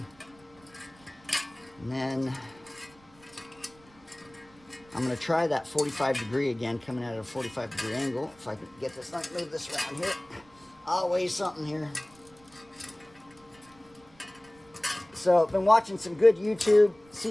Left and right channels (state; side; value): noise; right; rumble, 28 dB below the sound